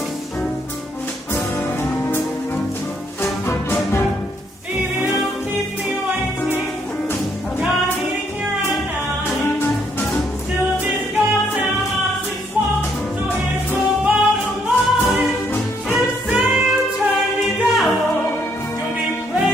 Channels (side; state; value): both; normal; correlation 0.71